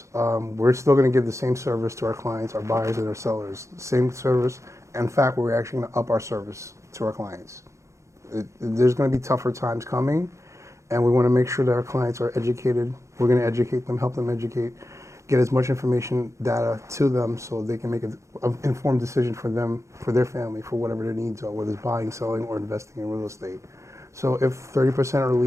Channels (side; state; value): left; late; 0.14 ms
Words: We're still going to give the same service to our clients, our buyers and our sellers. Same service. In fact, we're actually going to up our service to our clients. There's going to be tougher times coming, and we want to make sure that our clients are educated. We're going to educate them, help them educate, get as much information, data to them so they can make an informed decision for them, for their family, for whatever their needs are, whether it's buying, selling, or investing in real estate. So if 30% are